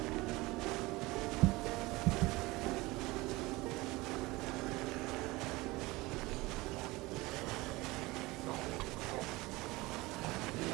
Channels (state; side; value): quieter; left; 21.5 dB